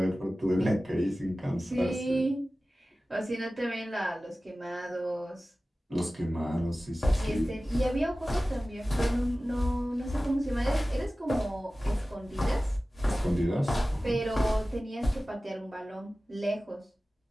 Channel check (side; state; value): both; normal; correlation 0.96